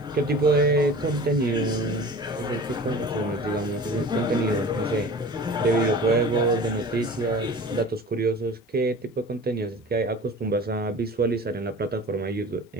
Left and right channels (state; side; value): normal; both; correlation 0.40